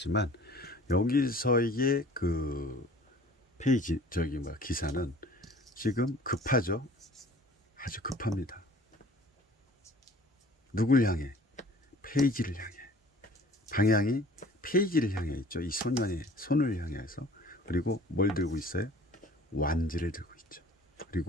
여기서의 그 페이지 기사는 지금 급하죠. 아주 급합니다. 누굴 향해? 페이지를 향해. 방향이 페이지를 향해 있죠. 이 소년의 손을 향해서. 그리고 뭘 들고 있어요? 완지를 들고 있죠.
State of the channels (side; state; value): both; normal; correlation 0.49